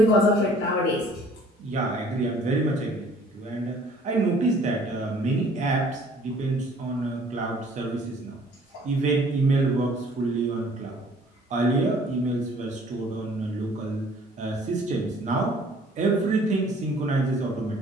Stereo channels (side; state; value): both; normal; correlation 0.55